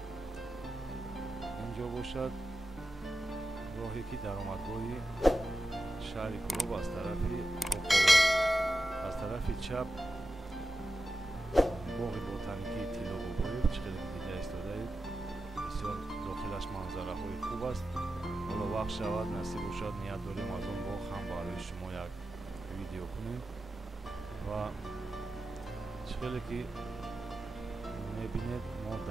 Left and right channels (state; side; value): normal; both; correlation 0.91